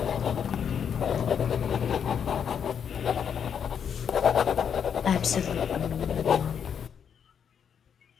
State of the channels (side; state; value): right; quieter; 7.7 dB